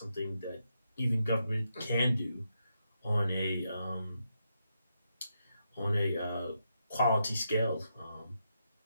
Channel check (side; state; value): both; inverted; correlation -0.83